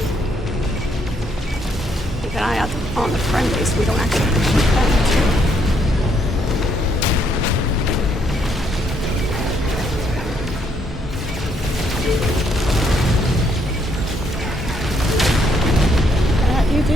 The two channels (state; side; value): normal; both; correlation 0.72